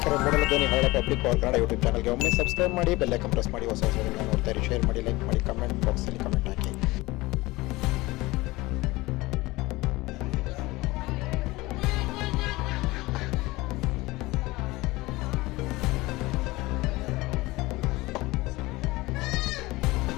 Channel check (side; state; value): right; quieter; 20.8 dB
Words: ಮೂಡಲ ಧ್ವನಿ ಹರಳ ಪಬ್ಲಿಕ್ ಪವರ್ ಕನ್ನಡ ಯೂಟ್ಯೂಬ್ ಚಾನಲ್ಗೆ ಒಮ್ಮೆ ಸಬ್ಸ್ಕ್ರೈಬ್ ಮಾಡಿ, ಬೆಲ್ ಐಕಾನ್ ಪ್ರೆಸ್ ಮಾಡಿ, ಹೊಸ ವಿಡಿಯೋಗಳನ್ನ ನೋಡ್ತಾ ಇರಿ. ಶೇರ್ ಮಾಡಿ, ಲೈಕ್ ಮಾಡಿ, ಕಮೆಂಟ್ ಬಾಕ್ಸಲ್ಲಿ ಕಮೆಂಟ್ ಹಾಕಿ.